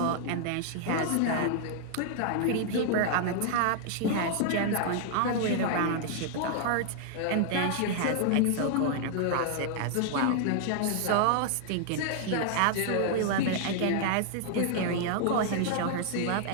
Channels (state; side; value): different; both; correlation 0.00